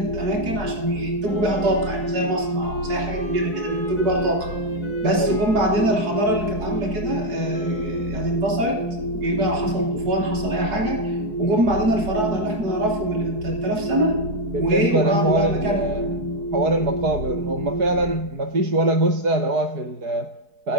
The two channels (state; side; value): late; left; 4.7 ms